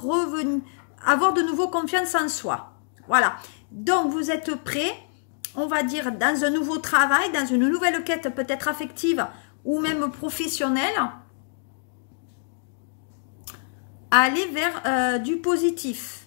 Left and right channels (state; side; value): silent; right; digital silence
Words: avoir de nouveau confiance en soi. Voilà. Donc, vous êtes prêts, on va dire, dans un nouveau travail, dans une nouvelle quête peut-être affective ou même professionnelle, à aller vers du